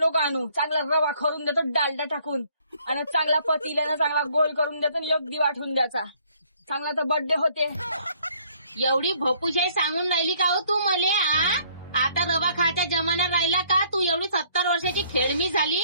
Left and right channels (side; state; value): both; inverted; correlation -0.62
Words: आणू. चांगला रवा करून देतो डालडा टाकून, आणि चांगला पतील्यानं चांगला गोल करून देतो, एक दिवा ठेवून द्यायचा. चांगला तर बर्थडे होते. एवढी भोपूशाही सांगून राहिली का हो तू मले? आता रवा खायचा जमाना राहिला का? तू एवढी 70 वर्षाची खेळमी झाली,